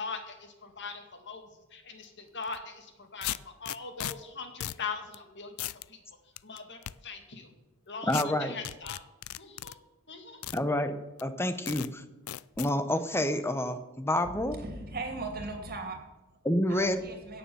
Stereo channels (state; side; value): normal; both; correlation 0.56